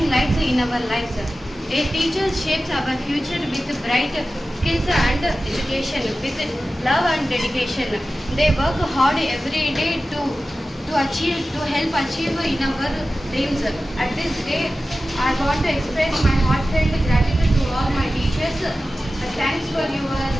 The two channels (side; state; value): both; normal; correlation 0.95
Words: lights in our lives. A teacher shapes our future with bright skills and education, with love and dedication. They work hard every day to help achieve in our dreams. At this day, I want to express my heartfelt gratitude to all my teachers. Thanks for your